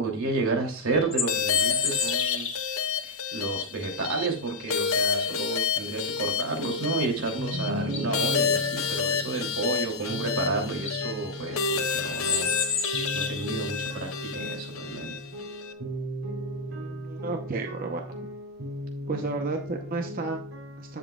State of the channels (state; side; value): normal; both; correlation 0.01